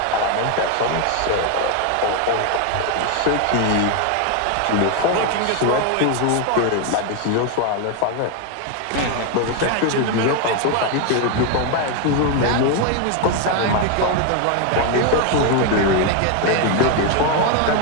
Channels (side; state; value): both; different; correlation 0.01